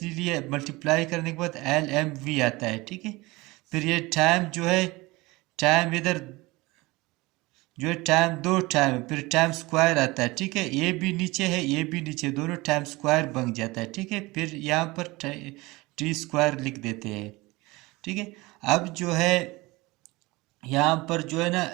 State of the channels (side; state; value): left; quieter; 21.9 dB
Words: मल्टीप्लाई करने के बाद एल एम वी आता है। ठीक है, फिर ये टाइम जो है, टाइम इधर जो है टाइम, दो टाइम है, फिर टाइम स्क्वायर आता है। ठीक है, ये भी नीचे है, ये भी नीचे, दोनों टाइम स्क्वायर बन जाता है। ठीक है, फिर यहाँ पर टी स्क्वायर लिख देते हैं। ठीक है, अब जो है यहाँ पर जो है ना,